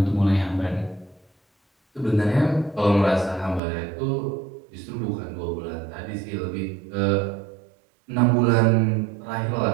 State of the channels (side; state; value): left; drops out; at 3.6 s